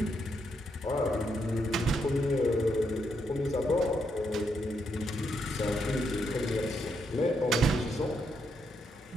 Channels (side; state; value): both; normal; correlation 0.78